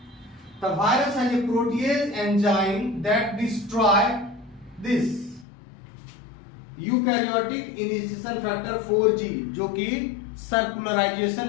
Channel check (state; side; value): drops out; right; at 5.5 s